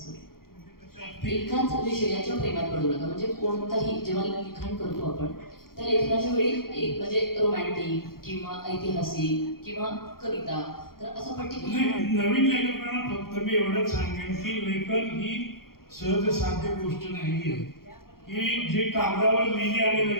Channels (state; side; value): late; right; 0.93 ms